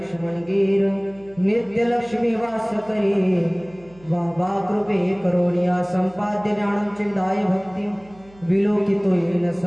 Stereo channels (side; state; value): right; noise; hum, 25 dB below the sound